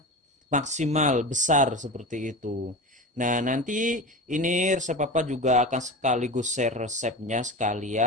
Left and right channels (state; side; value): normal; both; correlation 0.28